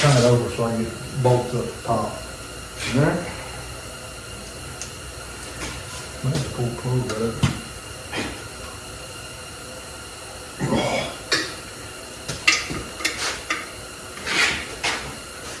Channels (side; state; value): both; identical; correlation 1.00